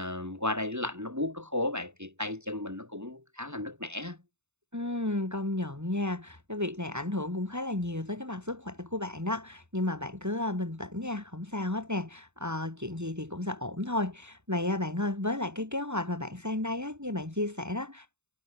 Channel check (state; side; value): late; left; 0.82 ms